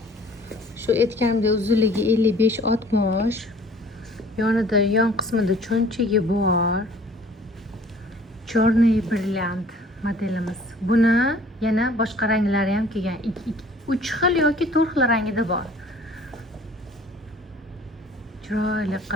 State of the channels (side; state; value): both; normal; correlation 0.52